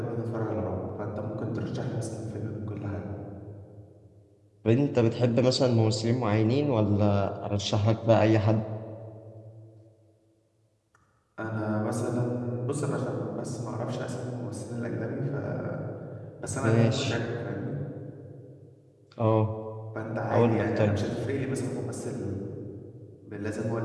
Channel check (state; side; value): identical; both; correlation 1.00